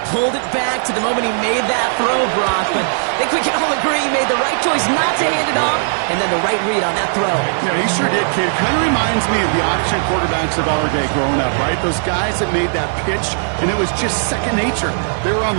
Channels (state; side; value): silent; left; digital silence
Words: pulled it back to the moment he made that throw, Brock. But I think we can all agree he made the right choice not to hand it off, and then the right read on that throw. Yeah, he sure did, kid. Kind of reminds me of the option quarterbacks of our day growing up, right? Those guys that made that pitch, and it was just second nature. They were on